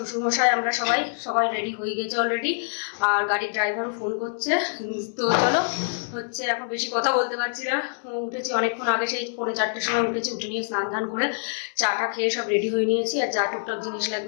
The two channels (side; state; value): right; silent; 61 dB below the other